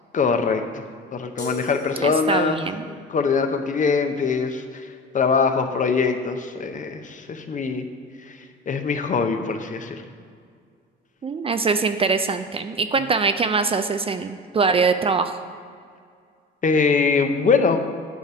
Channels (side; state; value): both; normal; correlation 0.31